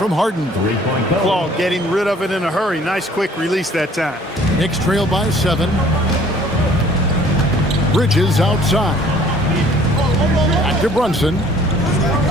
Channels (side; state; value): both; normal; correlation 0.55